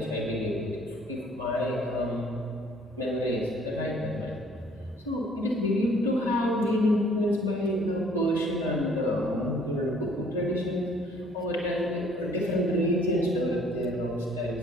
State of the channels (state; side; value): normal; both; correlation 0.58